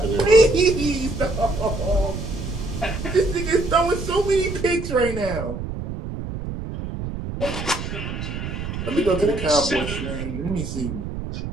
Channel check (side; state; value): right; noise; rumble, 6 dB below the sound